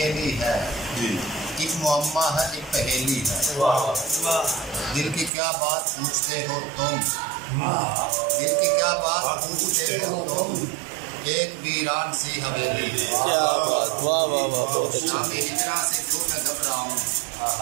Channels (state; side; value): drops out; left; at 5.3 s